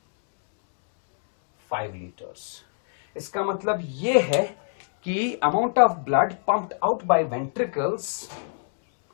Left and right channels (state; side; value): silent; right; 62 dB below the other